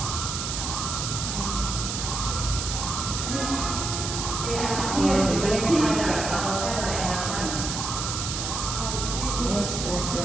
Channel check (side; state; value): right; noise; hiss, 3 dB below the sound